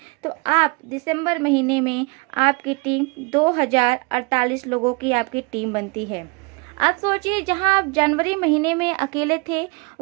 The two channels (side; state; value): left; quieter; 29.8 dB